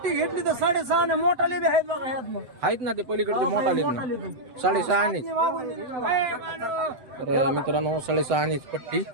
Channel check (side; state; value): left; late; 7.9 ms